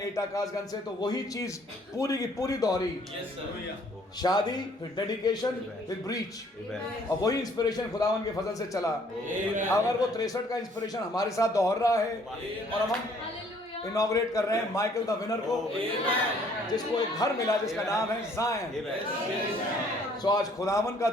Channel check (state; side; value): normal; both; correlation 0.61